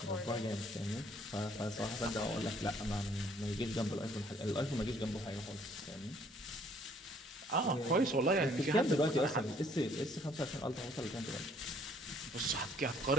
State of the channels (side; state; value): both; normal; correlation 0.62